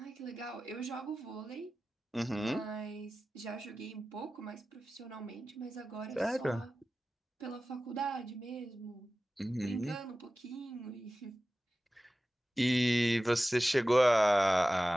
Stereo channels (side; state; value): both; normal; correlation 0.95